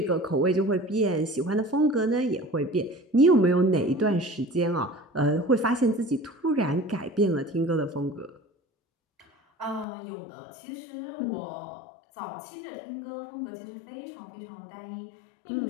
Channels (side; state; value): right; drops out; at 9.9 s